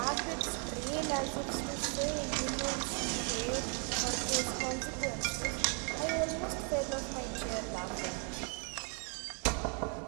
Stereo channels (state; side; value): quieter; left; 39.8 dB